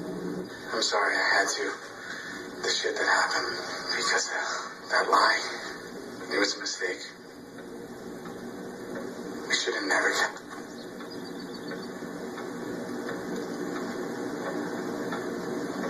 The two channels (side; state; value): both; identical; correlation 1.00